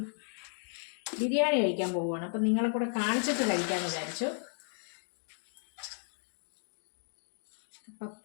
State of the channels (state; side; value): silent; right; digital silence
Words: ബിരിയാണി കഴിക്കാൻ പോവുകയാണ്. അപ്പം നിങ്ങളെ കൂടെ കാണിച്ചിട്ട് കഴിക്കാമെന്ന് വിചാരിച്ചു.